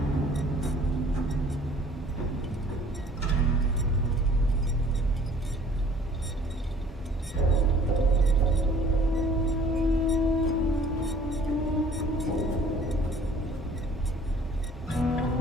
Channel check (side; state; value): both; normal; correlation 0.53